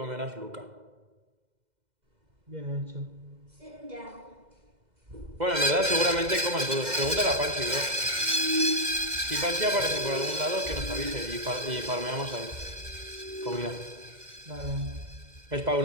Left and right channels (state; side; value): late; left; 2.0 ms